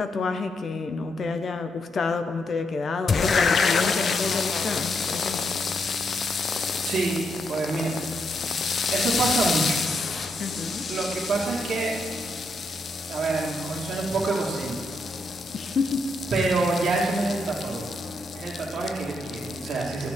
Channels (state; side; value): normal; both; correlation 0.79